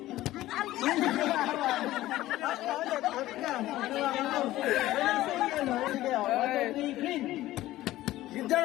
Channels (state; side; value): quieter; right; 15.6 dB